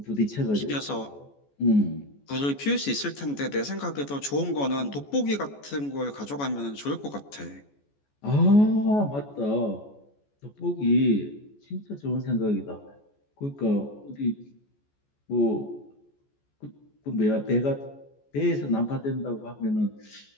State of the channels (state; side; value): late; right; 14 ms